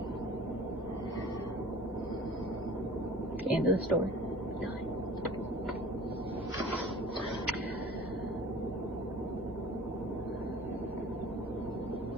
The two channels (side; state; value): both; normal; correlation 0.44